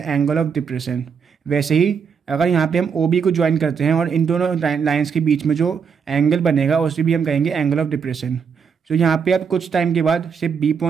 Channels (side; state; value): left; quieter; 6.4 dB